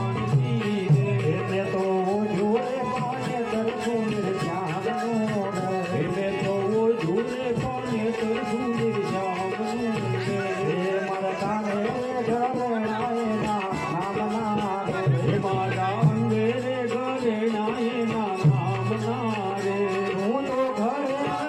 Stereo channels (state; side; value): identical; both; correlation 1.00